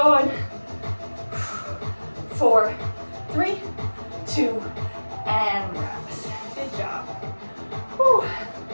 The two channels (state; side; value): inverted; both; correlation -1.00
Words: 4, 3, 2, and rest. Good job. Whew.